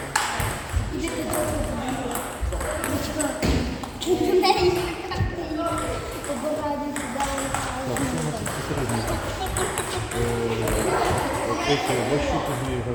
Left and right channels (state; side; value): identical; both; correlation 1.00